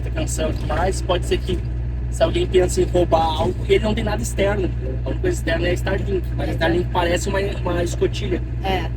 atenção e tudo mais, pode ser que se alguém pensa em roubar algo, ele não tem nada externo. A única coisa externa é a Starlink, mas a Starlink parece uma escotilha.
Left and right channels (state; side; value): identical; both; correlation 1.00